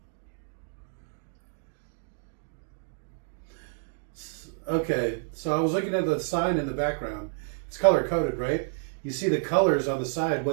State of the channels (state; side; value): silent; left; digital silence